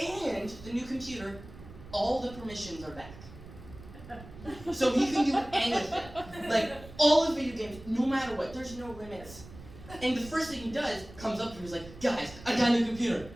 the new computer, all the permissions are back. So he can do anything. Like, all the video games, no matter what, there's no limits. And the first thing he does, comes up to me, he's like, guys, I got a new computer.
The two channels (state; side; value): noise; right; rumble, 17 dB below the sound